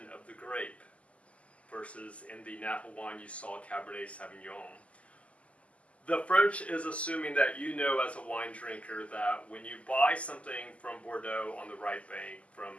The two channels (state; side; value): late; right; 0.064 ms